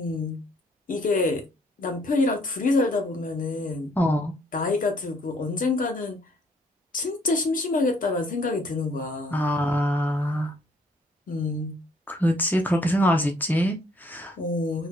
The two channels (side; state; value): both; normal; correlation 0.65